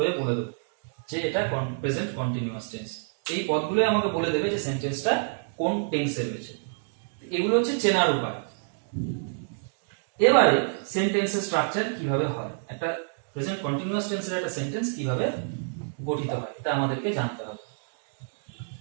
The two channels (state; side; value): silent; left; digital silence